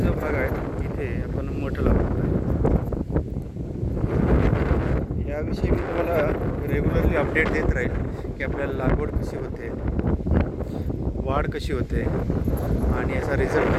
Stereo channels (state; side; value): identical; both; correlation 1.00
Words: भाग आहे इथे आपण मोठं लावतो. याविषयी मी तुम्हाला रेग्युलरली अपडेट देत राहील की आपल्याला लागवड कशी होते, वाढ कशी होते, आणि याचा रिझल्ट